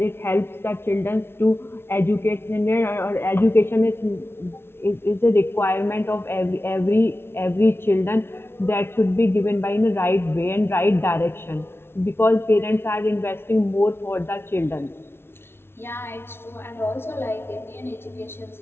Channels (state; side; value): late; right; 0.12 ms